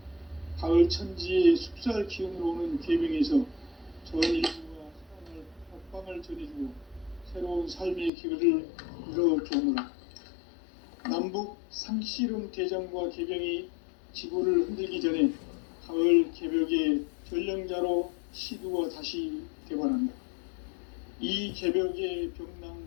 가을 천지의 숲살 기운으로 오는 계명에서 전 인류와 사랑을 박방을 전해주고 새로운 삶의 기회를 이뤄주오노라. 남북 상씨름 대전과 개병이 지구를 흔들기 전에 가을 개벽의 전령자로 시두가 다시 되관한다. 이 개벽의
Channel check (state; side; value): drops out; right; at 8.1 s